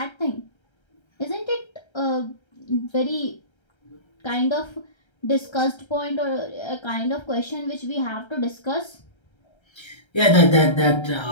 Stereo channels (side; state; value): right; late; 1.3 ms